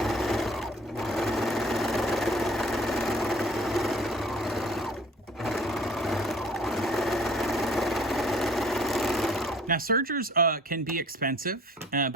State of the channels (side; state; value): both; normal; correlation 0.52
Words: Now, sergers can be expensive,